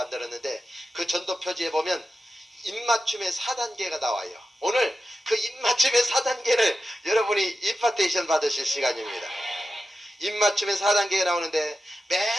그 전도 표지에 보면 입맞춤의 4단계가 나와요. 오늘 그 입맞춤의 4단계를 여러분이 임파테이션 받으실 시간입니다. 입맞춤의 4단계가 나오는데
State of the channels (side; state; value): both; normal; correlation 0.91